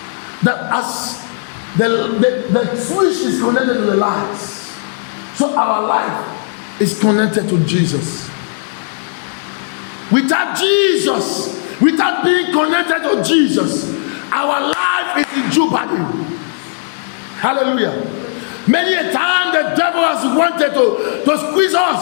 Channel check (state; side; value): silent; right; digital silence